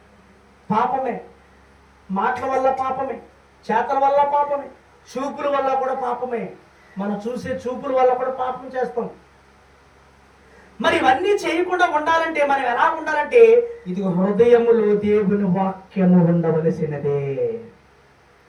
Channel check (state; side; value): identical; both; correlation 1.00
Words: పాపమే. మాటల వల్ల పాపమే, చేతల వల్ల పాపమే, చూపుల వల్ల కూడా పాపమే. మనం చూసే చూపుల వల్ల కూడా పాపం చేస్తాం. మరి ఇవన్నీ చేయకుండా ఉండాలంటే మనం ఎలా ఉండాలంటే, ఇది హృదయములో దేవుని వాక్యము ఉండవలసినదే.